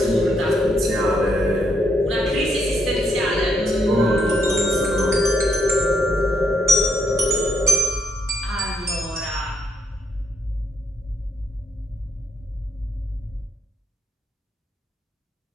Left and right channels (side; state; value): both; normal; correlation 0.76